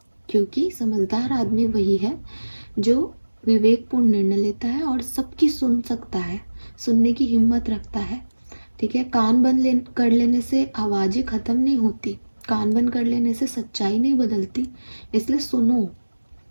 क्योंकि समझदार आदमी वही है जो विवेकपूर्ण निर्णय लेता है और सबकी सुन सकता है, सुनने की हिम्मत रखता है, ठीक है। कान बंद कर लेने से आवाज़ें ख़त्म नहीं होती, कान बंद कर लेने से सच्चाई नहीं बदलती, इसलिए सुनो,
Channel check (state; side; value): inverted; both; correlation -1.00